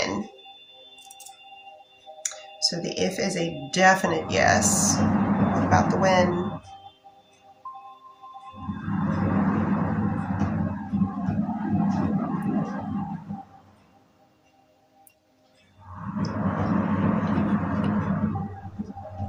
So the if is a definite yes. What about the when?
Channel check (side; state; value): both; identical; correlation 1.00